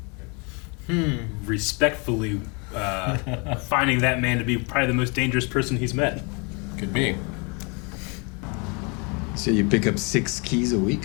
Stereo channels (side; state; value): right; quieter; 32.3 dB